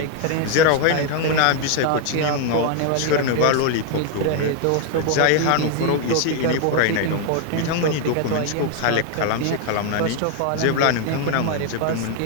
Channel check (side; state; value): both; different; correlation 0.00